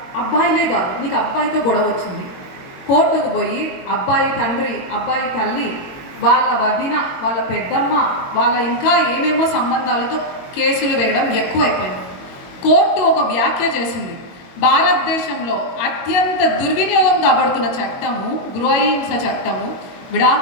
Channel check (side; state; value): right; late; 22 ms